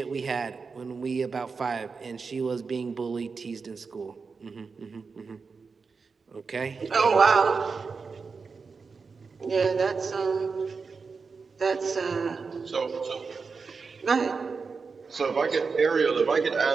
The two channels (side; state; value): left; quieter; 4.9 dB